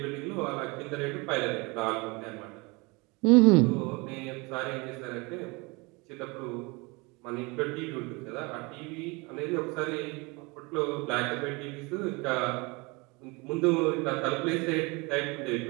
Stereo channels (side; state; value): left; quieter; 27.0 dB